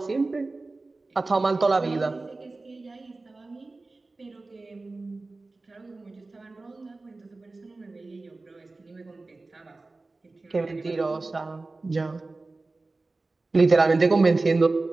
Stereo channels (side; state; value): left; quieter; 3.4 dB